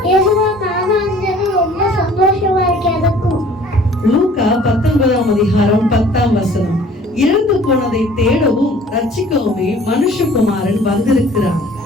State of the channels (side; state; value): both; normal; correlation 0.52